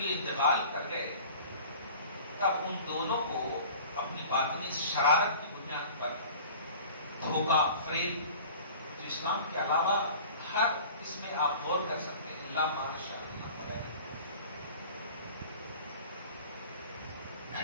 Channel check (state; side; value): inverted; both; correlation -0.43